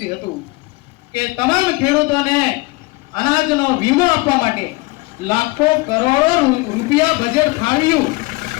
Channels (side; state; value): right; quieter; 23.6 dB